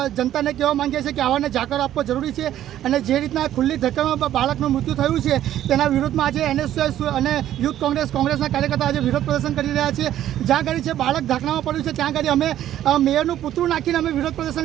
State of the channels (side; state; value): left; quieter; 12.1 dB